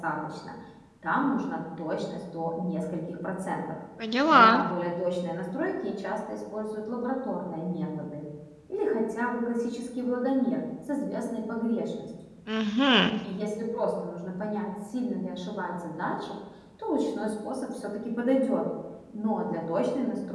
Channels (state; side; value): identical; both; correlation 1.00